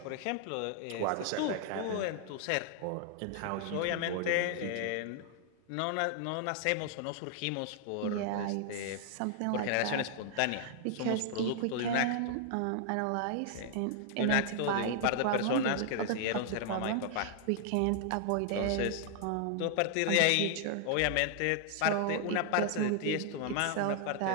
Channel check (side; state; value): both; different; correlation 0.00